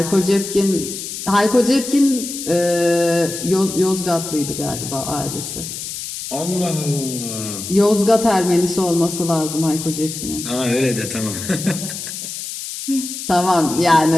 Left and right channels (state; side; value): noise; left; hiss, 8 dB below the sound